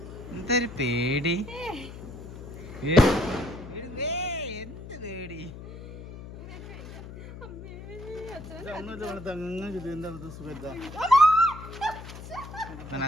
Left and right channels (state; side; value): noise; left; hum, 12 dB below the sound